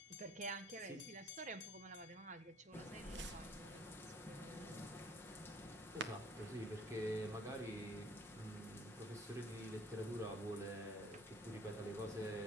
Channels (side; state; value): both; normal; correlation 0.56